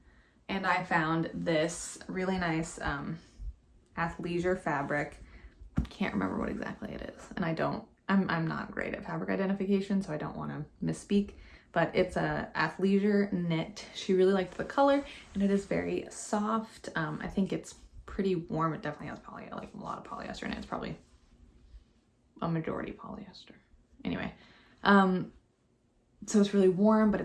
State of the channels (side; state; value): both; identical; correlation 1.00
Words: and I found this really nice athleisure fabric. Can't remember what exactly it is. And I'm not great at fabric identification, so I don't want to misspeak, but it's a athleisure knit. She really liked the color and it is very soft. I think it's pretty warm. It definitely has like a lot of polyester in it. It's probably a majority polyester. Anyway, so it's really warm, but